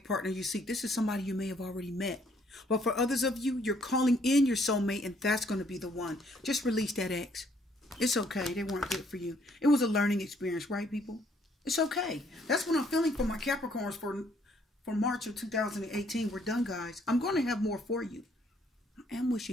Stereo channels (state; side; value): normal; both; correlation 0.66